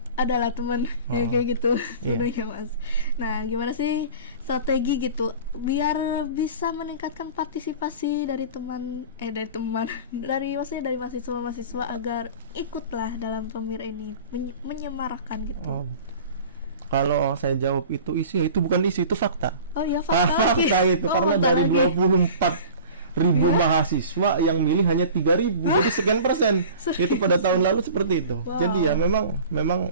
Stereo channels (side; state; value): both; inverted; correlation -0.40